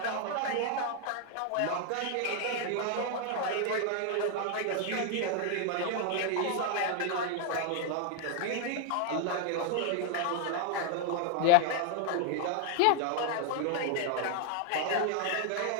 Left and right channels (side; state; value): both; different; correlation 0.00